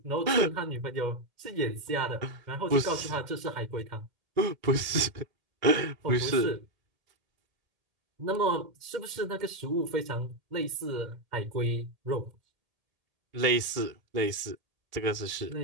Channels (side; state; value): left; late; 1.7 ms